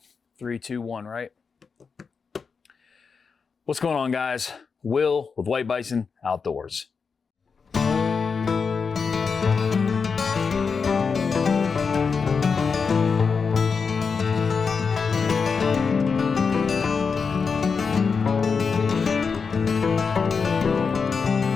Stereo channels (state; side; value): quieter; right; 5.4 dB